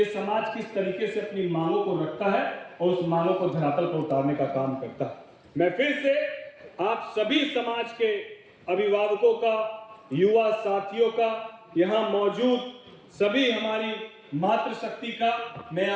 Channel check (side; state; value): both; identical; correlation 1.00